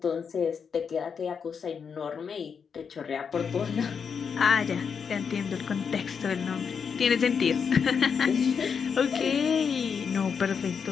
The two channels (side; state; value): right; quieter; 6.4 dB